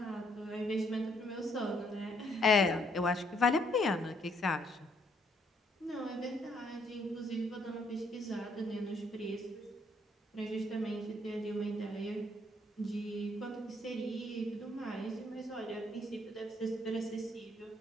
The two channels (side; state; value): both; normal; correlation 0.69